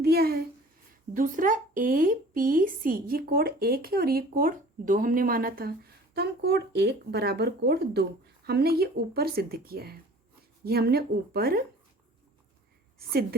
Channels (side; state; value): both; normal; correlation 0.47